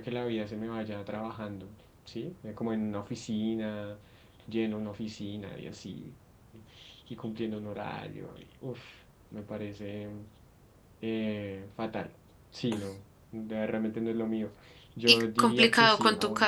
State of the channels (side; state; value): both; identical; correlation 1.00